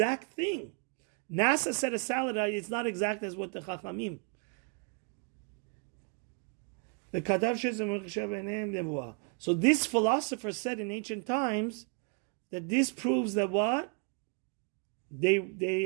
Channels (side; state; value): left; quieter; 38.0 dB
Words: thing? NASA said a salad, it's not exact as what the Chachamim. So this philosopher said in ancient times that this proves that what?